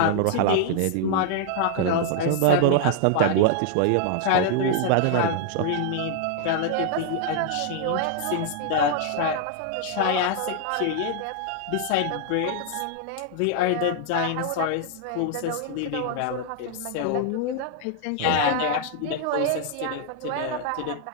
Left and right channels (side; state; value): both; different; correlation -0.01